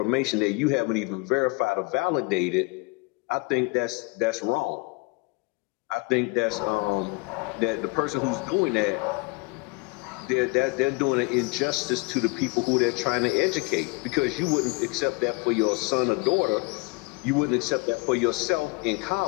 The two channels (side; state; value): right; quieter; 27.3 dB